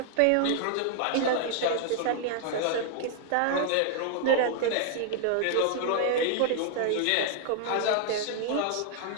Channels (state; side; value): different; both; correlation 0.00